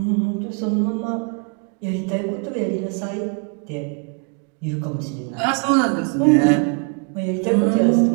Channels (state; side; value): quieter; left; 37.3 dB